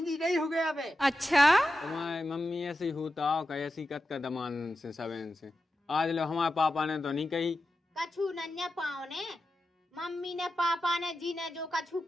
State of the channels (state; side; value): normal; both; correlation 0.91